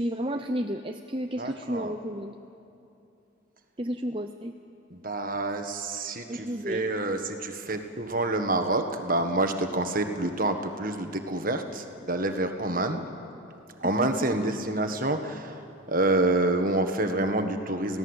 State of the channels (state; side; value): normal; both; correlation 0.17